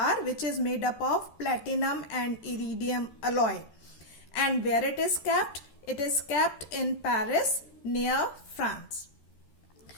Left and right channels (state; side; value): late; right; 13 ms